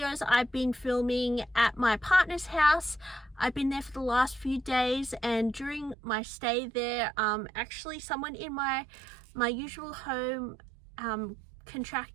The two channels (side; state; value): left; drops out; at 6.0 s